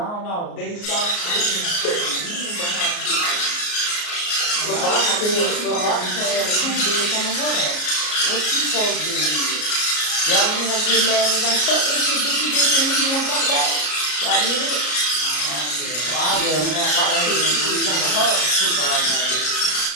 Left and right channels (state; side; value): late; right; 33 ms